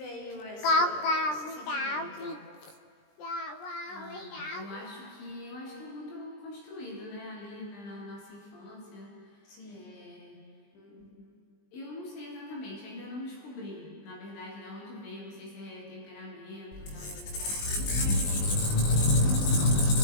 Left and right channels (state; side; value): late; right; 20 ms